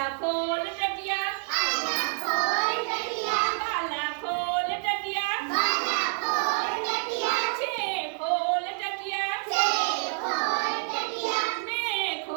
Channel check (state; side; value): silent; left; digital silence